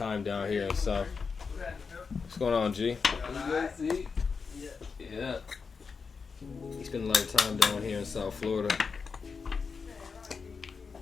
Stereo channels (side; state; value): right; quieter; 5.2 dB